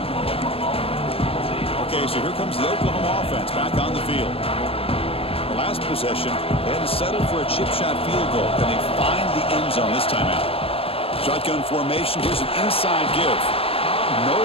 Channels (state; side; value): late; right; 0.27 ms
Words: Okay, so here comes the Oklahoma offense back on the field. The last possession, they had to settle for a chip shot field goal. Can they find the end zone this time out? Shotgun formation. Here's an inside give.